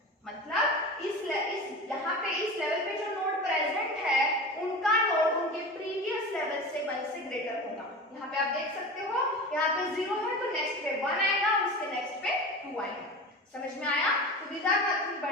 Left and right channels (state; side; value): normal; both; correlation 0.31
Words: मतलब इस यहाँ पे इस level यहाँ पे आप देख सकते हो, यहाँ पे 0 है तो नेक्स्ट पे 1 आएगा, उसके नेक्स्ट पे 2 आएगा। समझ में आया? तो these are nothing